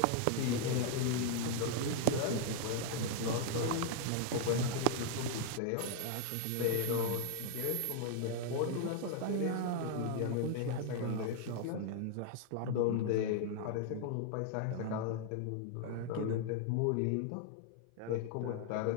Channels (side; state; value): both; different; correlation 0.00